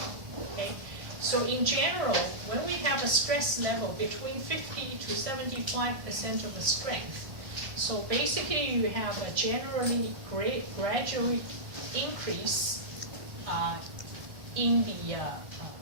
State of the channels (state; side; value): late; left; 1.6 ms